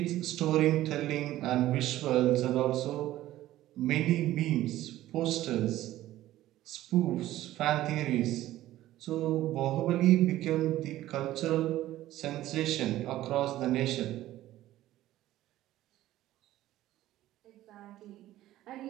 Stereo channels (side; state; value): left; quieter; 14.7 dB